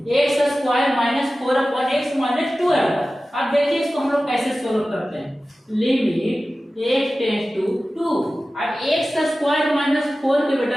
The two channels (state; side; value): normal; both; correlation 0.95